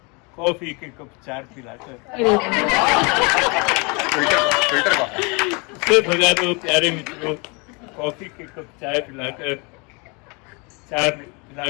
कॉफी के कप 4 पिलाकर। अरे वाह, फिल्टर का उसे भगा दो प्यारे मित्रों कॉफी के कप चाय पिलाकर, 4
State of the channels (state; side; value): quieter; right; 30.3 dB